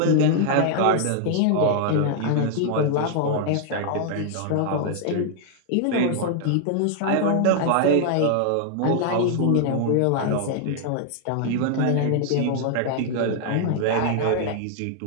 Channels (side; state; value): both; different; correlation 0.00